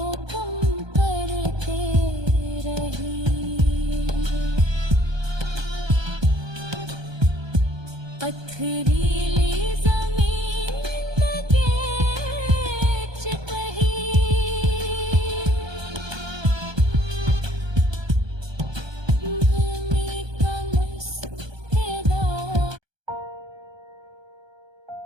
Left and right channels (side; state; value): left; late; 1.2 ms